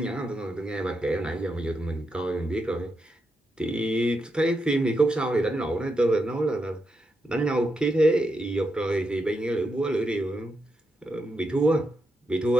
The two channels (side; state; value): both; normal; correlation 0.84